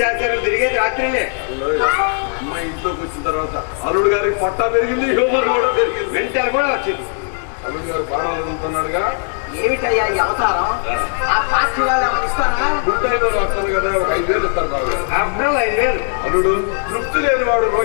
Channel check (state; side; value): silent; right; 57 dB below the other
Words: తిరిగేది రాత్రిలే. అమ్మాయి ఇంట్లోకి వచ్చిన తర్వాత అల్లుడు గారికి పొట్ట పెరిగింది, హ్యూమర్ కూడా పెరిగింది. వెంటనే కూడా వచ్చింది. అల్లుడు గారు బాణాలు ఎదుగుతున్నాడుగా. ఏమిటయ్యా ఈ అవతారం? ఆ పార్టీ వాళ్ళు ఏమైనా ఇస్తారా? ఉంటాయి వాళ్ళు వస్తారు కదా, ఒక 5,000 ఇస్తారు బాబు. అబ్బాయి 5,000. అల్లుడు తృప్తి లేని వాడు